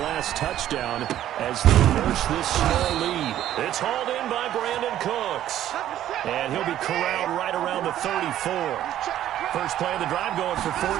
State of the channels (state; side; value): quieter; left; 12.1 dB